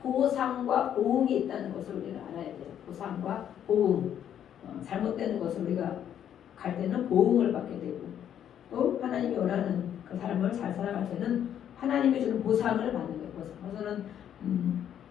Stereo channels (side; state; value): right; quieter; 9.8 dB